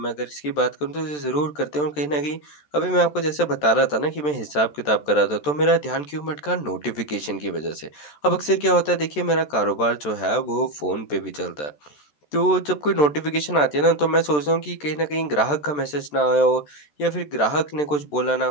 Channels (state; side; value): late; right; 14 ms